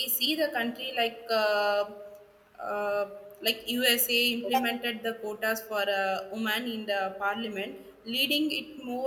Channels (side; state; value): both; identical; correlation 1.00